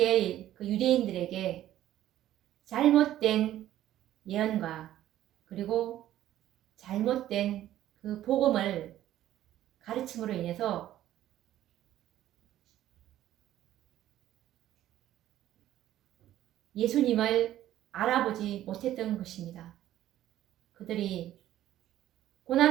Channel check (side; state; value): left; quieter; 13.0 dB